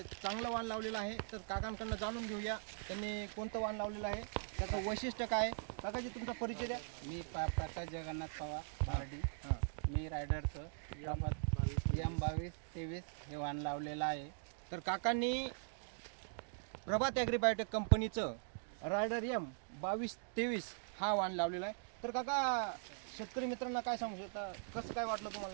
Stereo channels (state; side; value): silent; left; digital silence